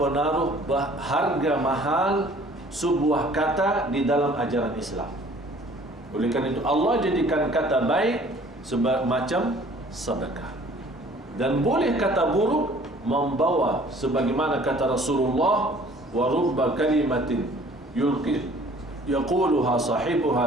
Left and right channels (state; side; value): normal; both; correlation 0.53